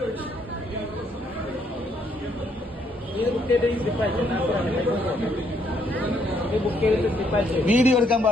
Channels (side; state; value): both; normal; correlation 0.71